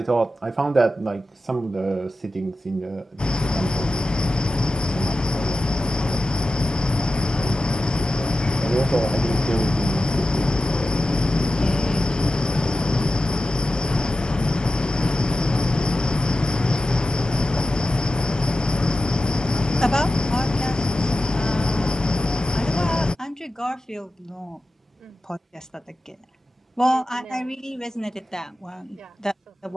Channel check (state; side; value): normal; both; correlation 0.92